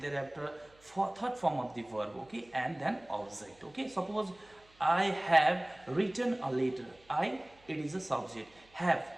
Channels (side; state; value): right; noise; hum, 29 dB below the sound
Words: for third form of the verb. Okay, and then object. Okay, suppose I have written a letter. I, it is a subject. Have,